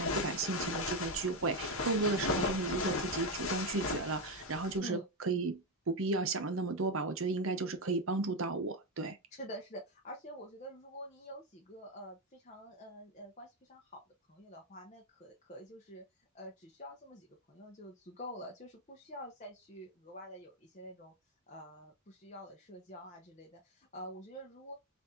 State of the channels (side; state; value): both; normal; correlation 0.09